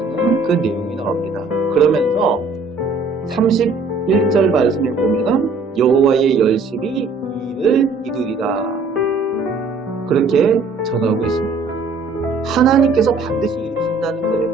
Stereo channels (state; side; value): quieter; left; 3.9 dB